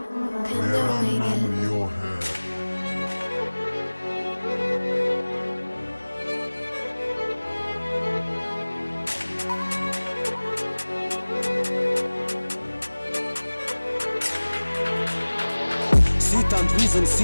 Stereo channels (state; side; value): inverted; both; correlation -1.00